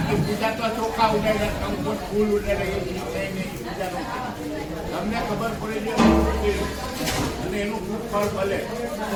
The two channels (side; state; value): both; identical; correlation 1.00